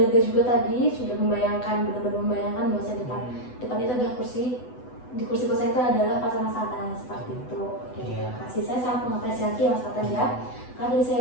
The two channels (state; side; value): late; right; 8.0 ms